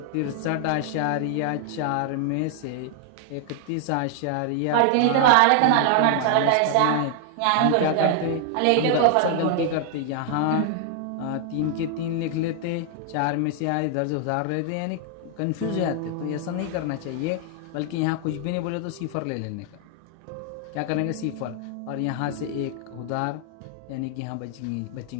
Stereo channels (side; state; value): both; different; correlation 0.00